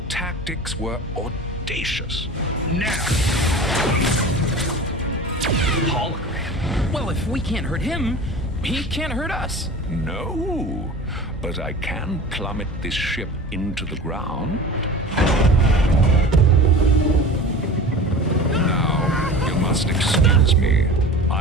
tactics were audacious. Now! Hologram. Well, if we can't hurt him, he can't hurt us. No, but I can plummet this ship into the ground. Now, you must excuse me.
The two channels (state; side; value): normal; both; correlation 0.37